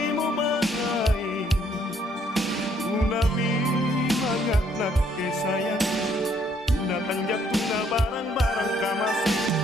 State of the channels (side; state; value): both; normal; correlation 0.67